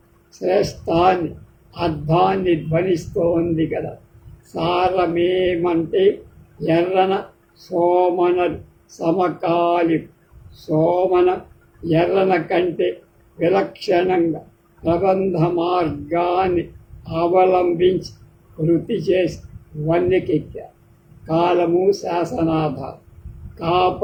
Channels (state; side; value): identical; both; correlation 1.00